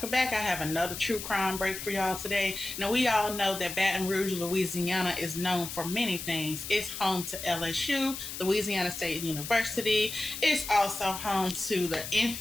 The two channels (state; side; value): noise; left; hiss, 8 dB below the sound